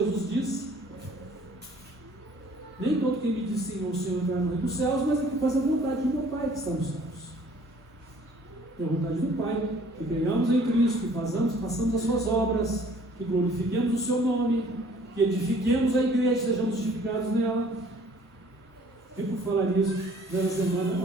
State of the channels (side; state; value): both; normal; correlation 0.56